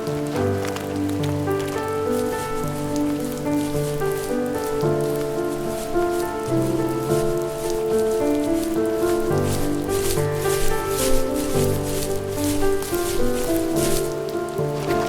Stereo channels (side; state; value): both; identical; correlation 1.00